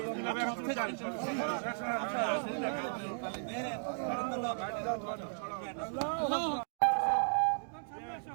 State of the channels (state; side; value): silent; left; digital silence